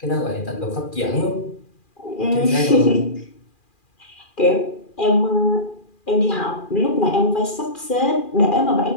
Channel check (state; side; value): late; right; 2.4 ms